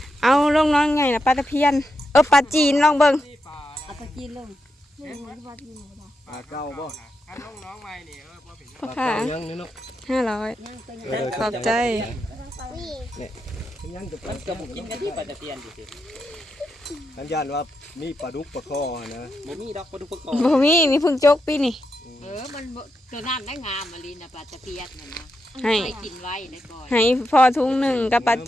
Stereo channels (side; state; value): both; normal; correlation 0.85